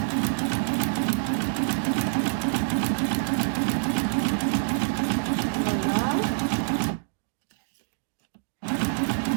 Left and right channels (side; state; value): left; silent; digital silence